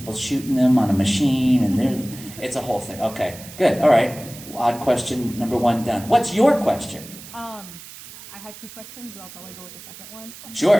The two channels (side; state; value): right; noise; hiss, 16 dB below the sound